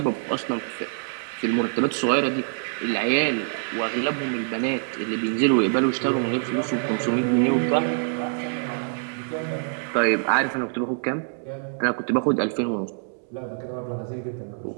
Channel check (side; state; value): left; silent; 62 dB below the other